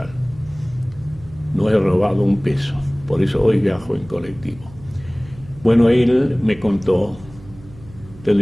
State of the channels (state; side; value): noise; right; hum, 20 dB below the sound